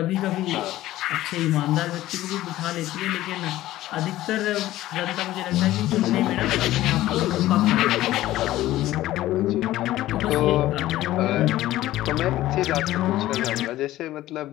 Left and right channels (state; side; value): quieter; right; 15.3 dB